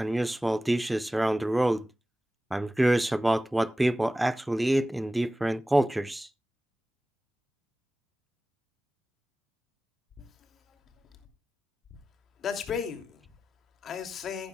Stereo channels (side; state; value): both; normal; correlation 0.96